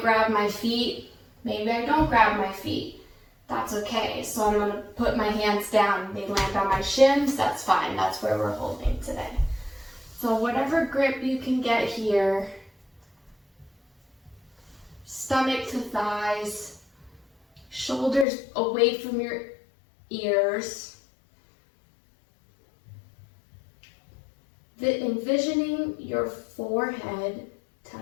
my feet, maybe I don't grab my feet. That's okay. So I'm going to put my hands down. They land on my shins, that's fine. That's where we're holding today. So whatever grip you can get here, stomach to thighs, shoulders away from your ears. Envisioning your forehead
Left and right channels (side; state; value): right; drops out; at 18.2 s